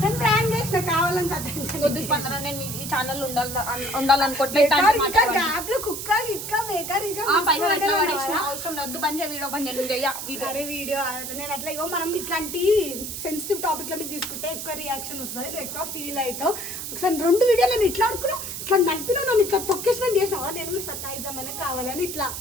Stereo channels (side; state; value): right; noise; hiss, 6 dB below the sound